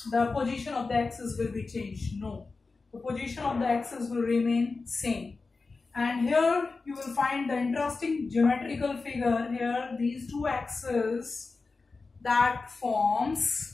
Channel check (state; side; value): quieter; right; 4.0 dB